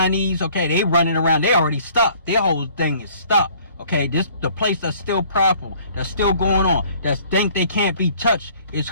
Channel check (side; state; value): both; inverted; correlation -0.56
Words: Okay, they running around. They already stopped. Their whole thing is stopped. Okay, the place that's still powerful, that's still going on, that think they can't be touched is